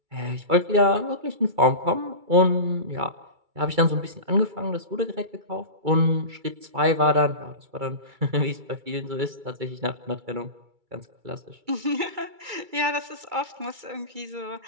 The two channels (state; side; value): late; left; 2.3 ms